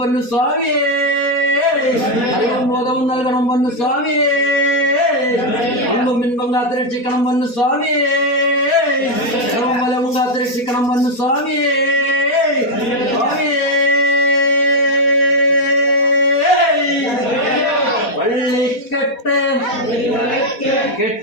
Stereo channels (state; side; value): late; right; 4.1 ms